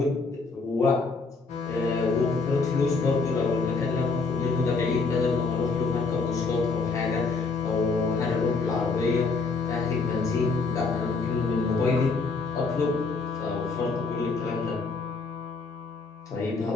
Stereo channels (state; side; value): quieter; right; 4.2 dB